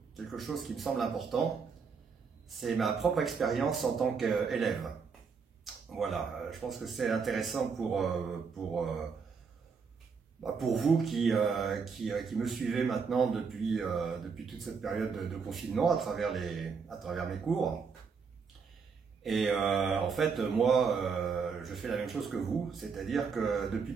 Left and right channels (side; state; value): left; quieter; 5.6 dB